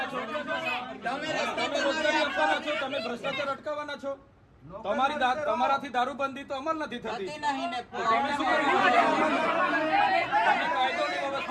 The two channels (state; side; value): identical; both; correlation 1.00